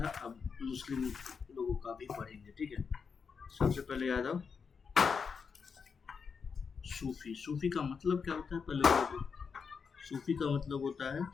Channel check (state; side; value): quieter; right; 5.8 dB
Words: अब मुस्लिम लोगों का भी पढ़ेंगे। ठीक है, सबसे पहले याद आओ सूफी। सूफी का मतलब क्या होता है पहले? सूफी का मतलब होता है